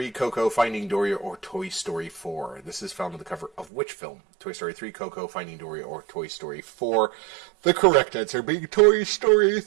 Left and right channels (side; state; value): left; drops out; at 3.7 s